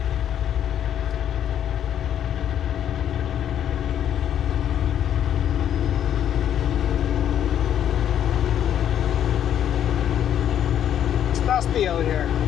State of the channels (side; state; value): right; quieter; 10.0 dB